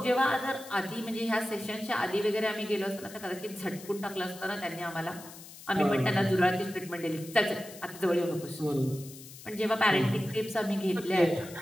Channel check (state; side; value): noise; left; hiss, 16 dB below the sound